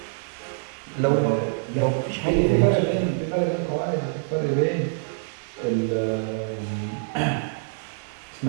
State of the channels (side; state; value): left; silent; digital silence